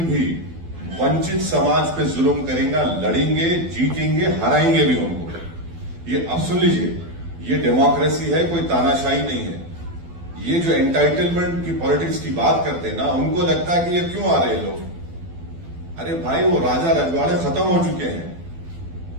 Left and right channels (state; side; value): late; left; 12 ms